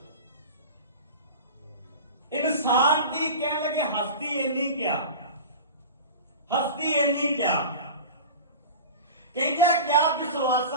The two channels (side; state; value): both; inverted; correlation -0.33